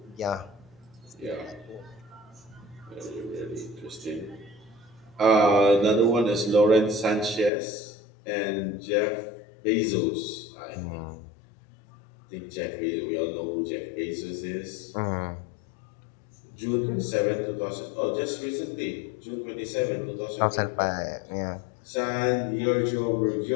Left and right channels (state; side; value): drops out; right; at 7.5 s